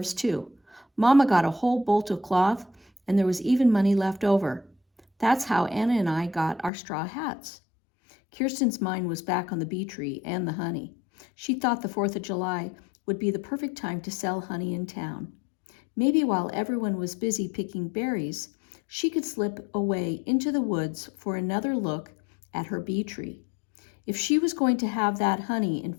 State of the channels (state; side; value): drops out; right; at 6.7 s